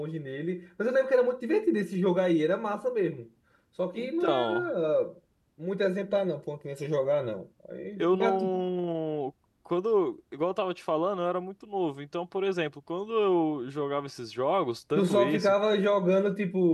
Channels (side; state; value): both; identical; correlation 1.00